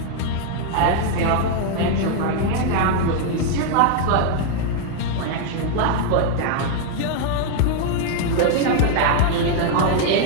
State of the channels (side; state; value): both; different; correlation 0.00